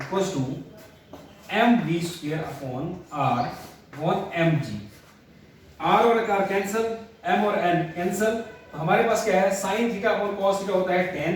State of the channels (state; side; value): identical; both; correlation 1.00